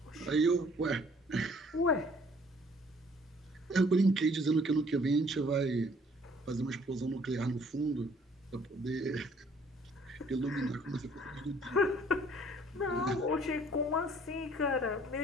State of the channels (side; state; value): both; normal; correlation 0.59